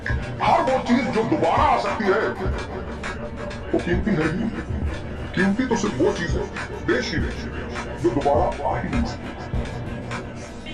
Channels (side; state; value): both; identical; correlation 1.00